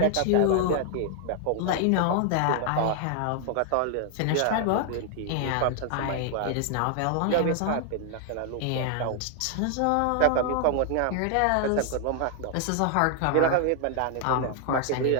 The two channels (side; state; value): both; different; correlation 0.00